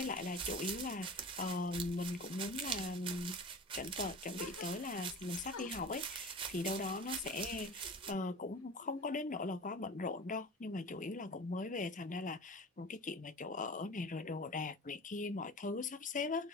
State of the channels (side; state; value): both; normal; correlation 0.36